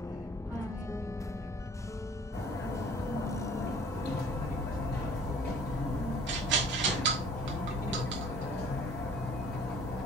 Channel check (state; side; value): normal; both; correlation 0.51